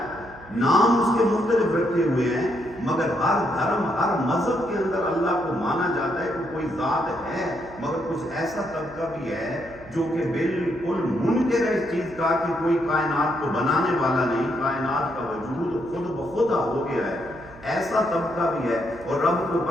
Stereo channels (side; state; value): right; noise; hum, 21 dB below the sound